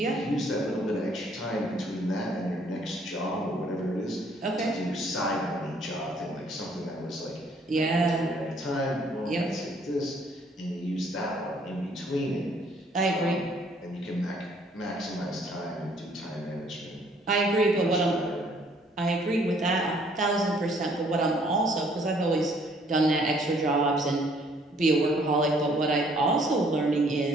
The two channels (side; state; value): both; normal; correlation 0.62